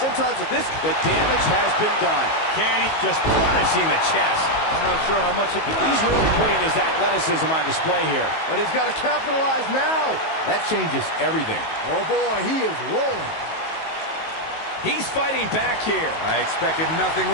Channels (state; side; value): late; right; 19 ms